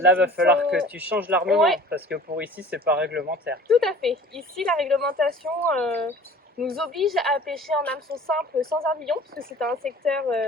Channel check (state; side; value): normal; both; correlation 0.45